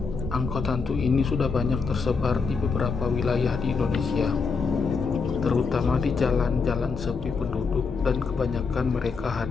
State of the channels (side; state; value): right; quieter; 4.9 dB